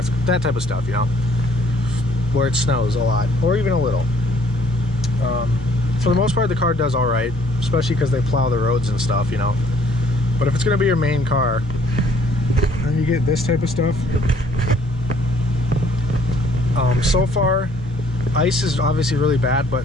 that type of stuff, you know, where it snows a lot or even a little. For the most part, the car does all right, especially because they plow the roads and stuff, you know. But if it's going to be your main car and you get this type of stuff, so far ice is obviously really bad,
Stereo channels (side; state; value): both; normal; correlation 0.61